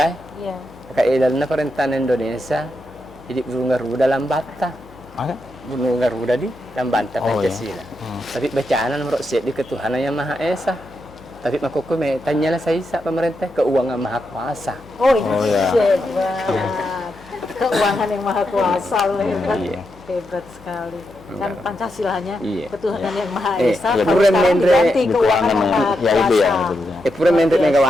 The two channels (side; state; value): left; noise; hum, 23 dB below the sound